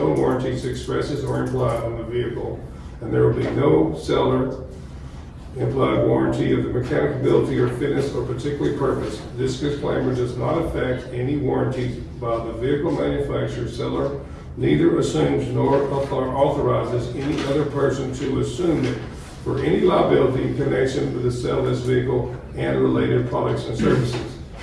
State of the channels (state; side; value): identical; both; correlation 1.00